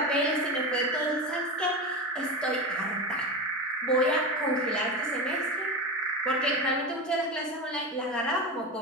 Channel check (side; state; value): both; normal; correlation 0.22